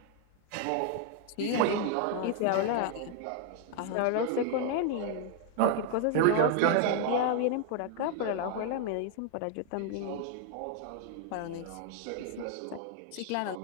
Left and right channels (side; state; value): both; different; correlation 0.00